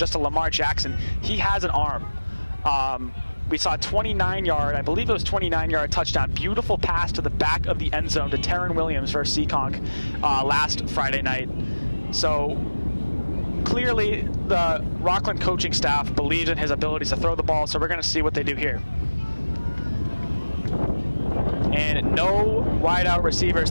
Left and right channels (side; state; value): both; inverted; correlation -1.00